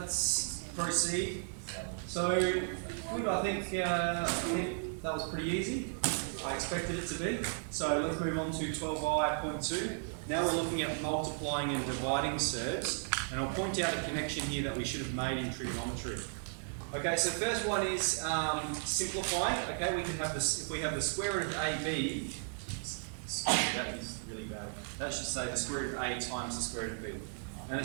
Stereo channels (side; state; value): left; silent; digital silence